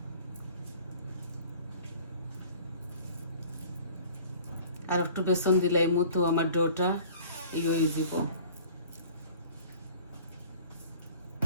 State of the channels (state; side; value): inverted; both; correlation -0.47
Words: আর একটু বেসন দিলাই মতো আমার ডোটা ইয়ে হয়ে যাব